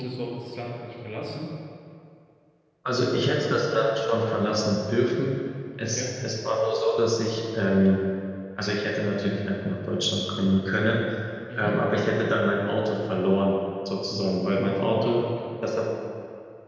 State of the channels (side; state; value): both; identical; correlation 1.00